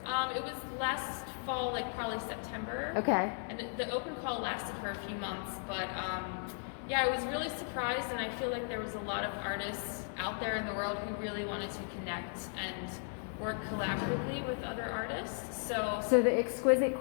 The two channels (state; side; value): silent; right; 54 dB below the other